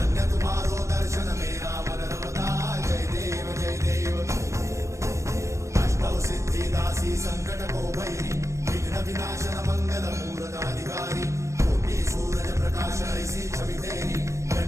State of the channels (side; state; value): left; late; 0.14 ms